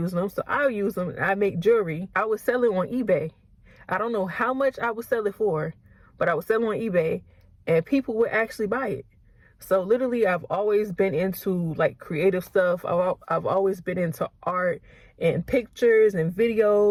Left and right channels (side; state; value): both; identical; correlation 1.00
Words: them, so I'll use them. I make jewelry. I would sell it on eBay. I don't know how much I would sell it for, but I would sell it on eBay and people would actually buy it. So literally, I've always been into like creative stuff. I've always been into art and pictures and